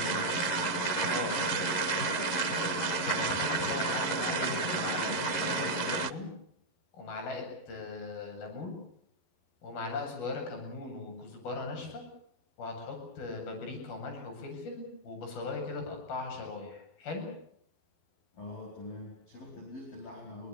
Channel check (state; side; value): late; right; 11 ms